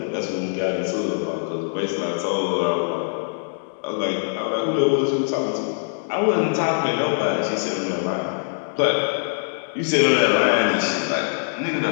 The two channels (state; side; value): silent; right; digital silence